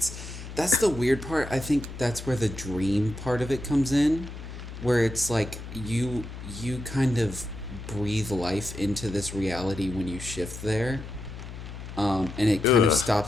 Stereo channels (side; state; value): left; noise; hum, 11 dB below the sound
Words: that's the weird part. I think that's where the dream part of it comes in, where it's like you kind of breathe life into this reality when you shift there, and it kind of